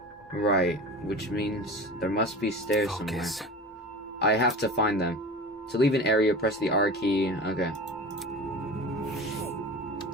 Right, which means there must be stairs somewhere. I have to find them. To leave an area, press the R key. Okay.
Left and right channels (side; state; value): both; normal; correlation 0.34